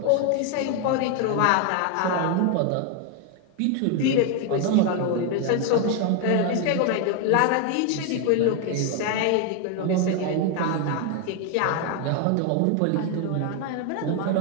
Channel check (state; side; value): different; both; correlation 0.01